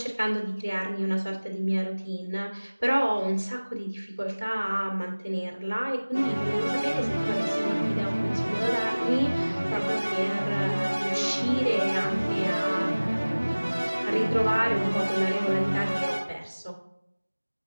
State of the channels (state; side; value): inverted; both; correlation -1.00